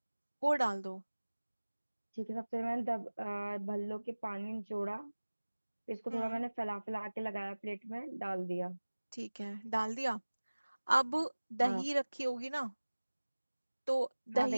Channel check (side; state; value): both; inverted; correlation -1.00